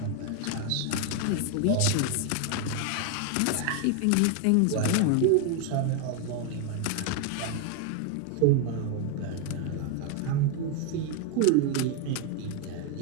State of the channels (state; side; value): different; both; correlation 0.01